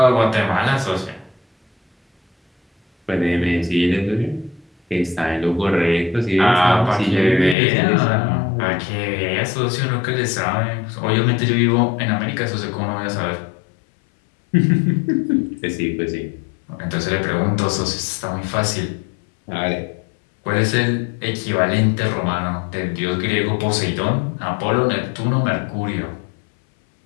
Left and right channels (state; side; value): drops out; right; at 7.6 s